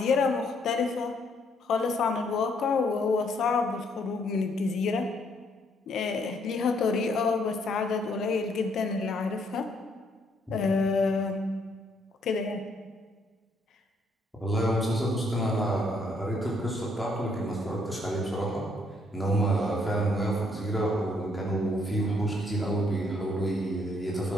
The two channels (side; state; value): both; normal; correlation 0.70